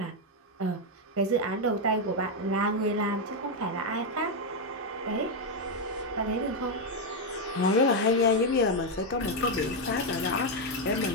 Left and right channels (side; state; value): both; normal; correlation 0.03